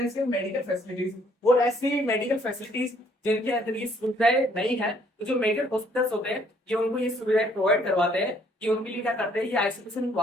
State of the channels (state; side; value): normal; both; correlation 0.64